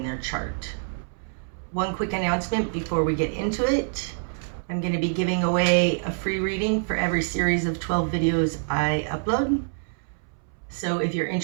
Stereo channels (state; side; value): silent; left; 61 dB below the other